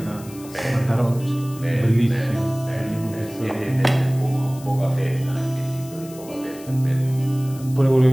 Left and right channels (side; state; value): left; noise; hiss, 19 dB below the sound